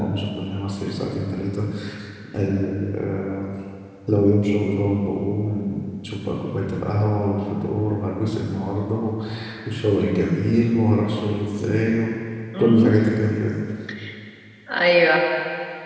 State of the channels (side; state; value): both; identical; correlation 1.00